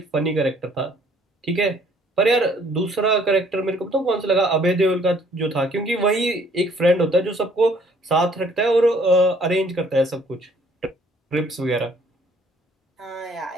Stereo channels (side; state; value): both; normal; correlation 0.60